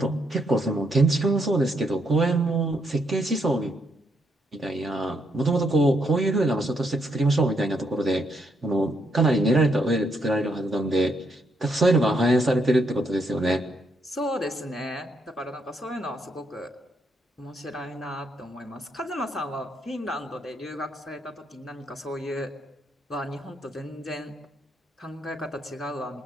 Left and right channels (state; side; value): normal; both; correlation 0.76